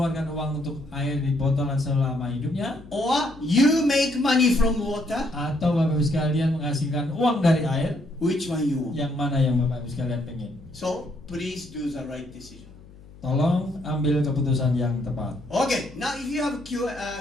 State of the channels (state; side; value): noise; left; hum, 22 dB below the sound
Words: uang untuk air di botolan selama hidupnya, or you make money from water. atau Bapak Ibu sekalian menghasilkan uang dari air, Which one you want? yang mana yang Bapak Ibu sekalian pengen? So, please do the right decision. Tolong ambil keputusan yang tepat. Okay, now if you have